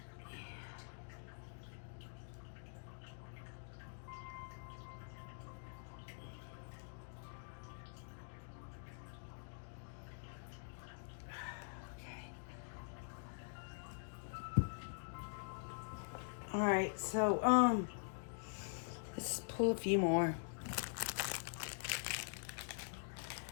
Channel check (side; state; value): right; silent; digital silence